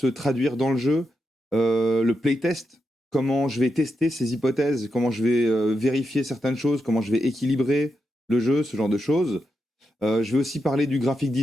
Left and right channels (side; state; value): both; normal; correlation 0.86